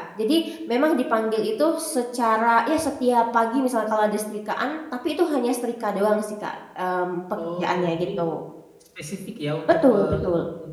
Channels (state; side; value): identical; both; correlation 1.00